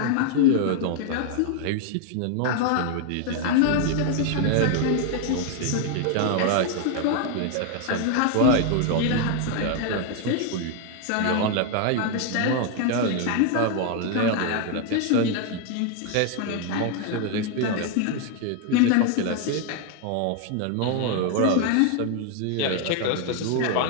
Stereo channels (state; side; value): different; both; correlation 0.00